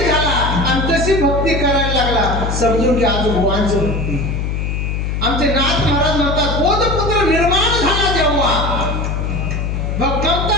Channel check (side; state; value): left; noise; hum, 1 dB below the sound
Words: झाला आणि तशी भक्ती करायला लागला, समजून की आज भगवानची भक्ती. आमचे नाथ महाराज म्हणतात बोधपुत्र निर्माण झाला जेव्हा, भगवंता